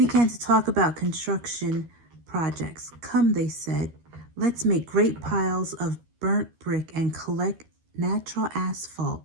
to talk about construction projects. Come, they said, let's make great piles of burnt brick and collect natural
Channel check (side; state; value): left; late; 13 ms